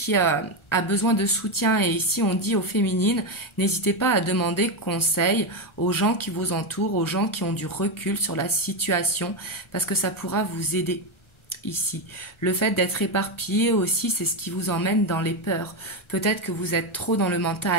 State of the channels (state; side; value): late; right; 1.4 ms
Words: a besoin de soutien et ici on dit aux féminines, n'hésitez pas à demander conseil aux gens qui vous entourent, aux gens qui ont du recul sur la situation parce que ça pourra vous aider. Ici, le fait d'être éparpillé aussi, c'est ce qui vous emmène dans les peurs. Peut-être que vous êtes trop dans le